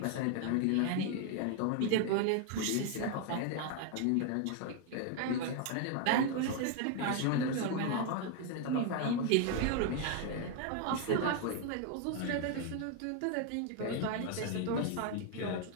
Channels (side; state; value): both; different; correlation 0.01